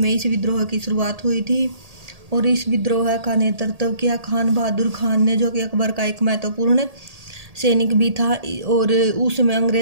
इस विद्रोह की शुरुआत हुई थी और इस विद्रोह का नेतृत्व किया खान बहादुर खान ने, जो कि अकबर का एक महत्वपूर्ण सैनिक भी था। और उसमें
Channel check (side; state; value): left; late; 1.8 ms